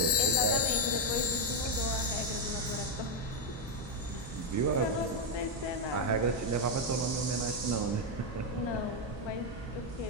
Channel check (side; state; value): both; normal; correlation 0.03